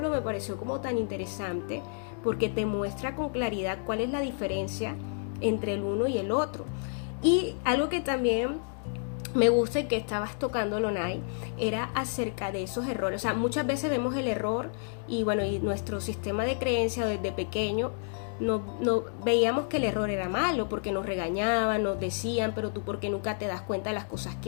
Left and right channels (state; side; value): silent; right; digital silence